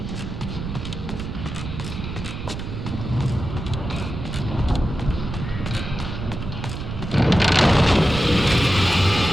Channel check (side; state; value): right; noise; rumble, 7 dB below the sound